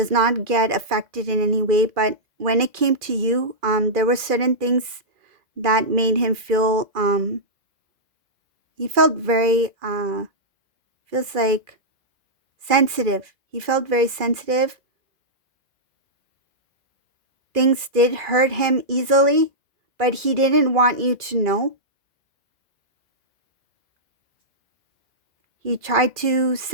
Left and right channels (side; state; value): left; late; 2.4 ms